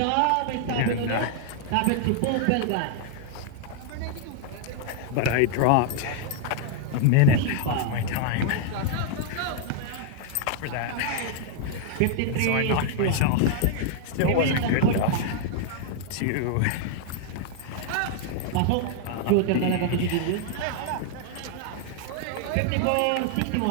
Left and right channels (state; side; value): different; both; correlation 0.00